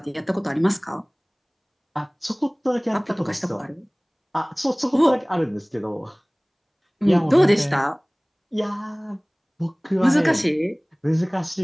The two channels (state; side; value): identical; both; correlation 1.00